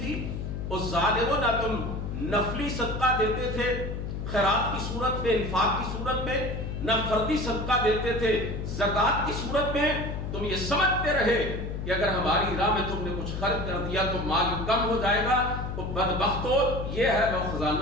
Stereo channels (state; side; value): noise; left; hum, 5 dB below the sound